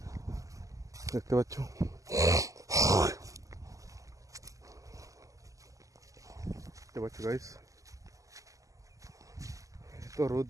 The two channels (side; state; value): left; late; 0.16 ms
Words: দেখতে পাচ্ছ। দেখতে পাচ্ছ গাইস, তো রোদ